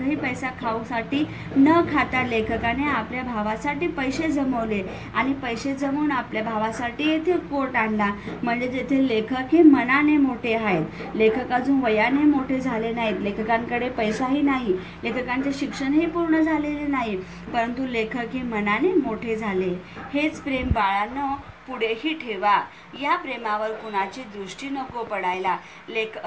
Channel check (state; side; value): identical; both; correlation 1.00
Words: पैसा खाऊसाठी न खाता लेखकाने आपल्या भावासाठी पैसे जमवले आणि पैसे जमवून आपल्या भावासाठी येथे कोट आणला, म्हणजे येथे लेखक हे मनाने मोठे आहेत। लेखक अजून वयाने मोठे झाले नाहीत, लेखकांकडे पैसाही नाही, लेखकांचे शिक्षणही पूर्ण झालेले नाही, परंतु लेखक हे मनाने मोठे झाले। हेच प्रेम बाळांनो पुढेही ठेवा, या प्रेमावर कुणाची दृष्टी नको पडायला।